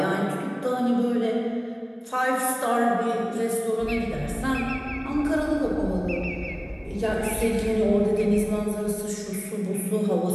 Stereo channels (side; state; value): both; identical; correlation 1.00